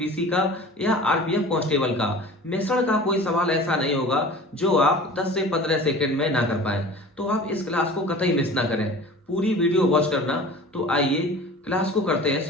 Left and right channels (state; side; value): normal; both; correlation 0.41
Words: का या आरपीएफ कांस्टेबल का, मिश्रण का कोई सवाल ऐसा नहीं होगा जो आप 10 से 15 सेकंड में ना कर पाए। तो आप इस क्लास को कतई मिस ना करें, पूरी वीडियो वॉच करना। तो आइए क्लास को करते हैं